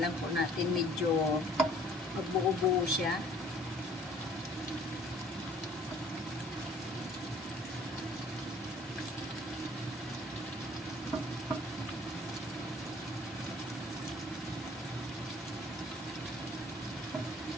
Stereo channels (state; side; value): normal; both; correlation 0.54